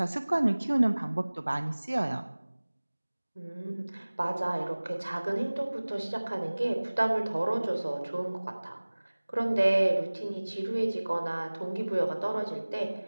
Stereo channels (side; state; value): both; inverted; correlation -1.00